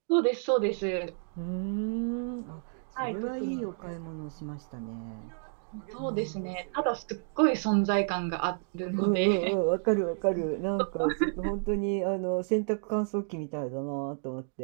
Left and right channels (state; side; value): silent; left; 57 dB below the other